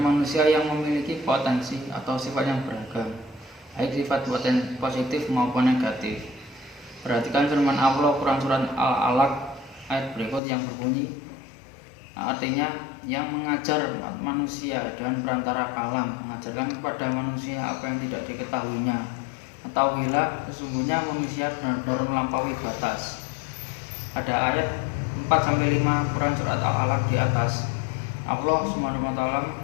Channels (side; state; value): right; drops out; at 10.4 s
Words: yang memiliki potensi atau sifat yang beragam, baik sifat positif maupun negatif. Perhatikan firman Allah Quran surat Al-Alaq ayat berikut yang berbunyi, artinya yang mengajar manusia dengan perantara kalam, mengajarkan kepada manusia apa yang tidak diketahuinya. Ketahuilah sesungguhnya manusia benar-benar melampaui batas. Pada ayat 4-5 Quran surat Al-Alaq di atas, Allah SWT